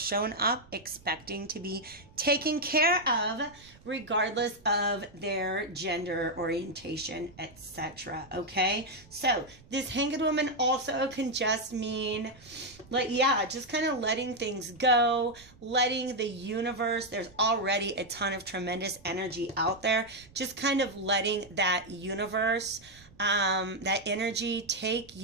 up expecting to be taken care of regardless of their gender orientation, etc. Okay, so this Hanged Woman also can just mean, like, yeah, just kind of letting things go, letting the universe, there's already a ton of tremendous energy out there, just kind of letting that universe, that energy take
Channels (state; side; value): noise; right; rumble, 24 dB below the sound